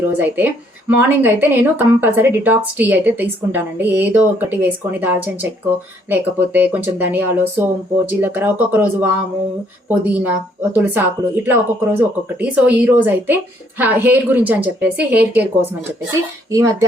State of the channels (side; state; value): both; normal; correlation 0.67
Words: రోజు అయితే మార్నింగ్ అయితే నేను కంపల్సరీ డిటాక్స్ టీ అయితే తీసుకుంటానండి. ఏదో ఒకటి వేసుకొని దాల్చిన చెక్కో లేకపోతే కొంచెం ధనియాలు, సోంపు, జీలకర్ర, ఒక్కొక్క రోజు వాము, పుదీనా, తులసాకులు, ఇట్లా ఒక్కొక్క రోజు ఒక్కొక్కటి. సో ఈ రోజు అయితే హెయిర్ గురించి అని చెప్పేసి, హెయిర్ కేర్ కోసం అని చెప్పేసి ఈ